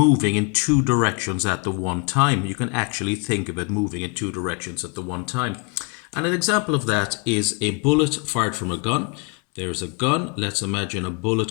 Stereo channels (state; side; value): quieter; right; 33.8 dB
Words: in two directions at the one time. You can actually think of it moving in two directions at the one time. And an example of that is a bullet fired from a gun. There's a gun. Let's imagine a